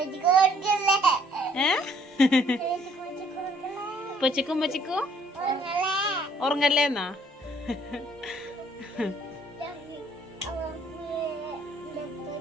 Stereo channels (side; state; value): both; normal; correlation 0.62